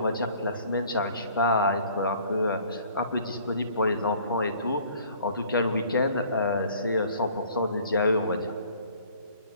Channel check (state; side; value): inverted; both; correlation -0.54